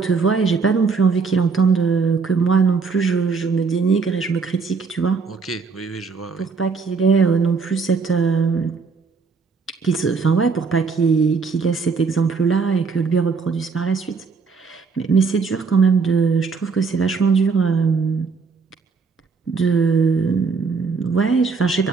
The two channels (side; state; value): left; quieter; 5.0 dB